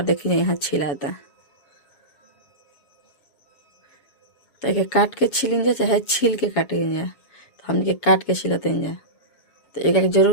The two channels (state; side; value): late; right; 7.1 ms